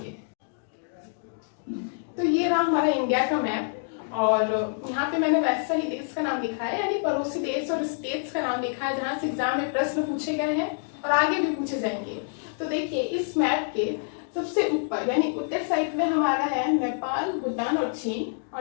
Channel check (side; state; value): right; silent; digital silence